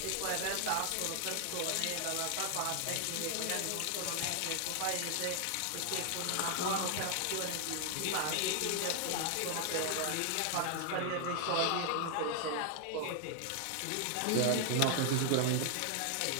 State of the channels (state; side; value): different; both; correlation 0.00